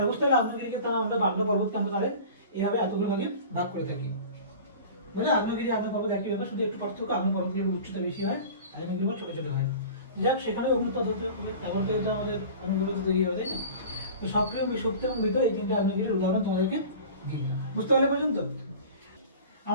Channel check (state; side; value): inverted; both; correlation -0.39